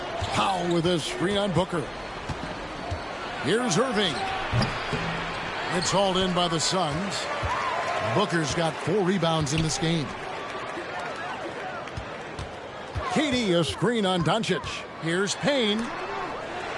Powell with a screen on Booker. Here's Irving. It's hauled in by the Suns. Booker's got 4 rebounds in this game. KD a screen on Doncic. Here's Payne.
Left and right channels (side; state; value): both; identical; correlation 1.00